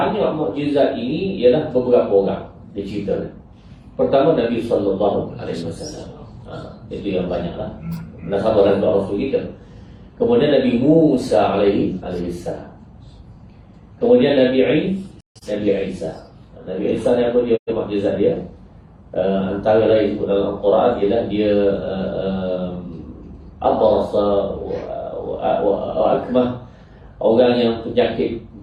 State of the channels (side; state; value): both; identical; correlation 1.00